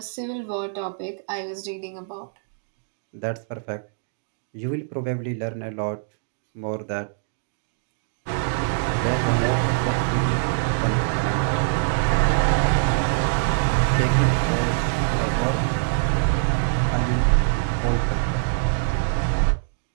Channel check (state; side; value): silent; left; digital silence